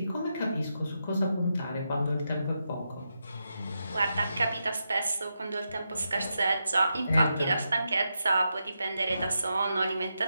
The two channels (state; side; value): inverted; both; correlation -0.85